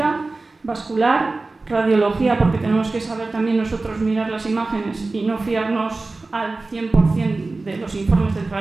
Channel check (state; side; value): quieter; left; 3.4 dB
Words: vascular, radiología, porque tenemos que saber también nosotros mirar las imágenes y no fiarnos al 100% de los informes del